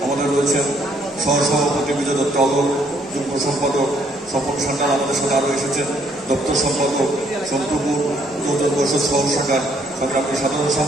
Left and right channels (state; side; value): normal; both; correlation 0.67